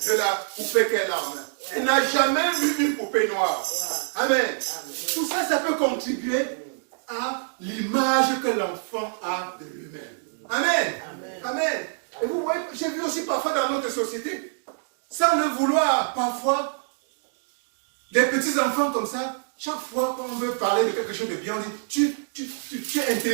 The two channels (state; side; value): silent; left; digital silence